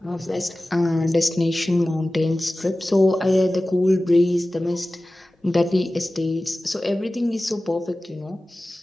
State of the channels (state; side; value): normal; both; correlation 0.96